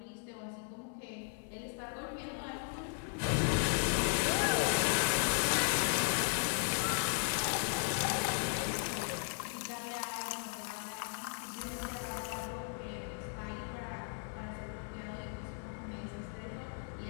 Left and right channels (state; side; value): silent; right; 54 dB below the other